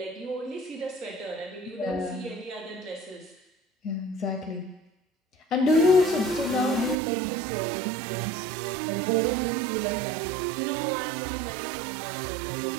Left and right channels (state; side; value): drops out; left; at 7.0 s